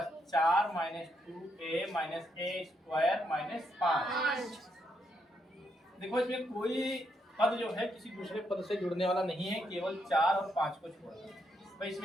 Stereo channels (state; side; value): normal; both; correlation 0.78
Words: 4 minus 2a minus a² minus 5। देखो इसमें कोई पद जो है किसी दूसरे पद से जुड़ने वाला नहीं है, केवल 4 और 5 को छोड़कर। भाई